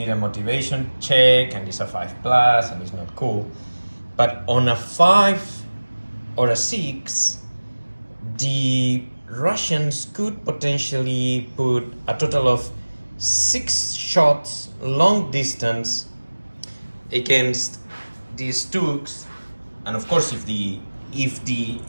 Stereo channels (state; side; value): inverted; both; correlation -1.00